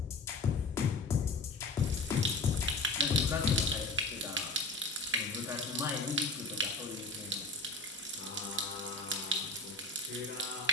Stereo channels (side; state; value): right; quieter; 3.1 dB